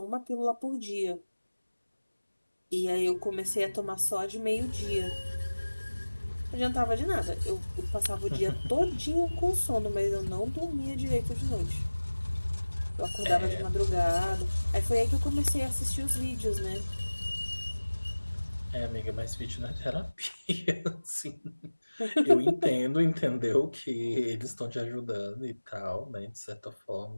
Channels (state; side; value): inverted; both; correlation -1.00